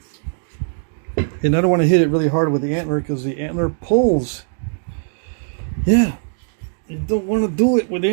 And I don't want to hit it really hard with the antler because the antler pulls. Yeah, you don't want to do it with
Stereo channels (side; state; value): left; silent; digital silence